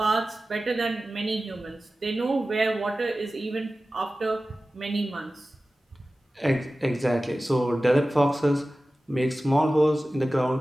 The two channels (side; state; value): both; normal; correlation 0.95